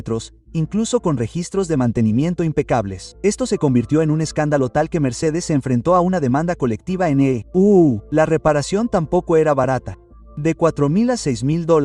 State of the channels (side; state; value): both; identical; correlation 1.00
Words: incluso con registros de mantenimiento impecables. Esto se convirtió en un escándalo tal que Mercedes se enfrentó a una demanda colectiva en EU. La reparación tampoco era barata. De $4.000 a